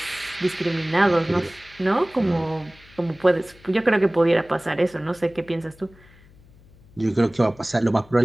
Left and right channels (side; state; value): left; noise; hum, 26 dB below the sound